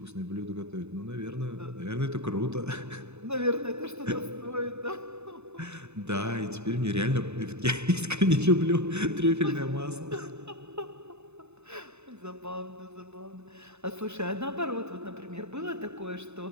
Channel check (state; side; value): late; left; 0.81 ms